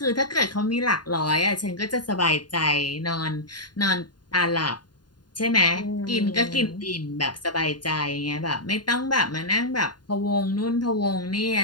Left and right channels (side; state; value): right; late; 0.70 ms